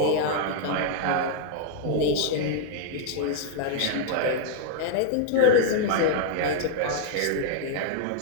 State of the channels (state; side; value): different; both; correlation -0.01